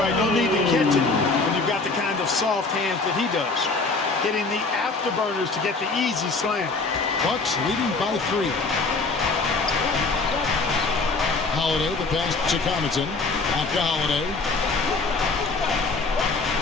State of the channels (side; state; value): right; quieter; 3.8 dB